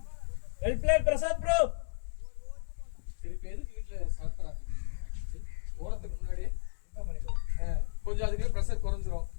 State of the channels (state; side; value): silent; right; digital silence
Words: plate Prasad bro திருப்பி எதுக்கு வீட்டுல சாப்பிட்றாங்க ஓரத்துக்கு முன்னாடியே கொஞ்சம் அதுக்கு ப்ரெஷர் குறைஞ்சிரும்